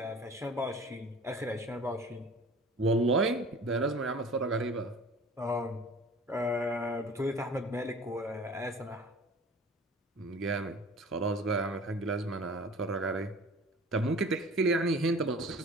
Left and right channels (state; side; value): normal; both; correlation 0.44